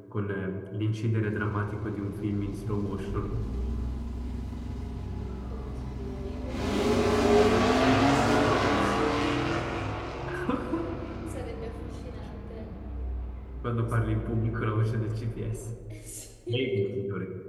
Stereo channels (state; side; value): identical; both; correlation 1.00